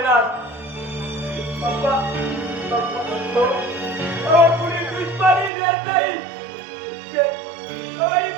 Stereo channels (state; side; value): drops out; left; at 5.5 s